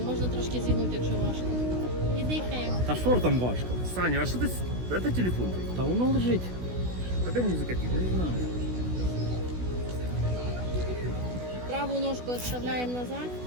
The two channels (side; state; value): left; late; 16 ms